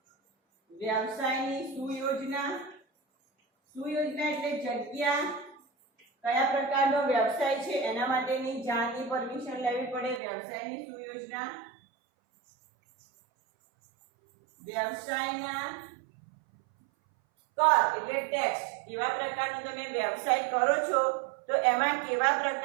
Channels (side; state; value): left; drops out; at 10.2 s